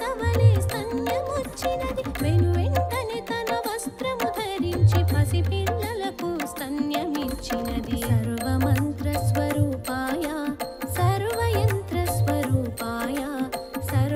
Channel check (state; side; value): identical; both; correlation 1.00